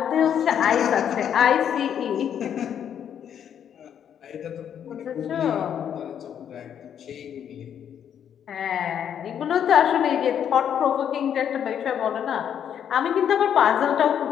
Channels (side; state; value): right; quieter; 8.9 dB